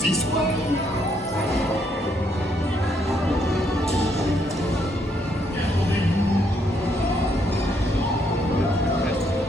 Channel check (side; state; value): both; normal; correlation 0.73